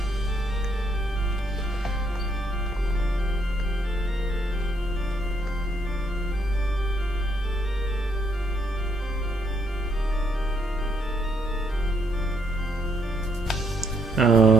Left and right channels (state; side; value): normal; both; correlation 0.72